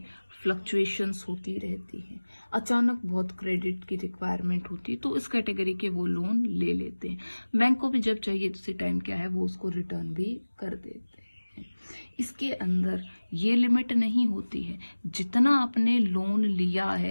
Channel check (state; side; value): inverted; both; correlation -1.00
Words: फ्लक्चुएशंस होती रहती हैं, अचानक बहुत क्रेडिट की रिक्वायरमेंट होती है, तो इस कैटेगरी के वो लोन ले लेते हैं। बैंक को भी जब चाहिए उसी टाइम क्या है, वो उसको रिटर्न भी कर देते हैं। इसके अंदर ये लिमिट नहीं होती है, जितना आपने लोन लिया